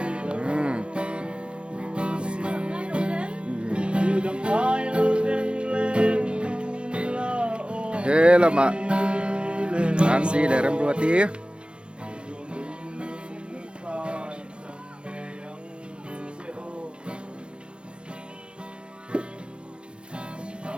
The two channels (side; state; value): left; late; 0.057 ms